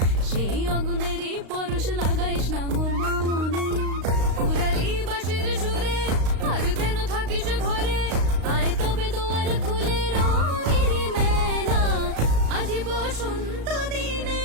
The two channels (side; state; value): left; late; 35 ms